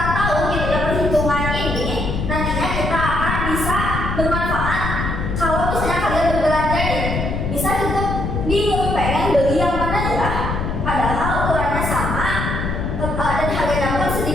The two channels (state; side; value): noise; left; rumble, 2 dB below the sound